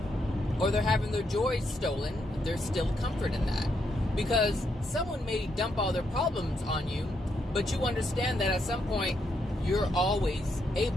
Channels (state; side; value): normal; both; correlation 0.78